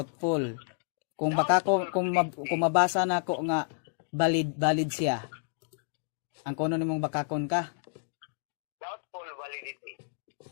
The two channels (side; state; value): right; silent; digital silence